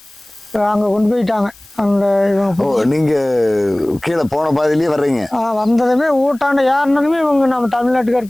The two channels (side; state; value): left; noise; hiss, 26 dB below the sound